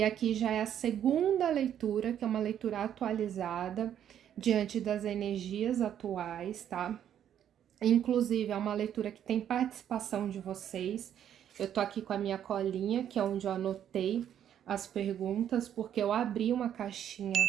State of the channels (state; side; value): quieter; left; 9.9 dB